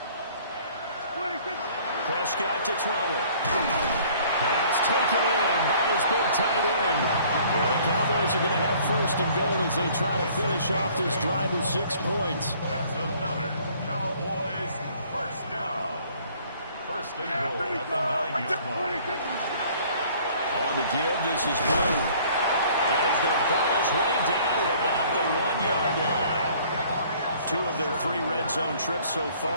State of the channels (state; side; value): inverted; both; correlation -0.56